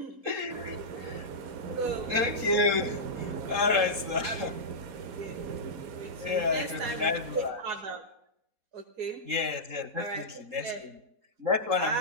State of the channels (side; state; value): left; late; 3.7 ms